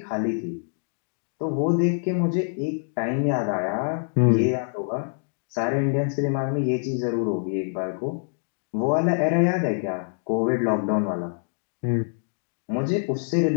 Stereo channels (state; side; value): silent; right; digital silence